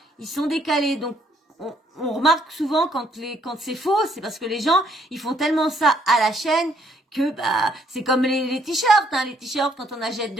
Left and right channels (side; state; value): both; normal; correlation 0.68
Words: Ils sont décalés. Donc, on remarque souvent quand c'est faux, c'est parce que les gens, ils font tellement ça à la chaîne que c'est comme les t-shirts, hein, les t-shirts quand on achète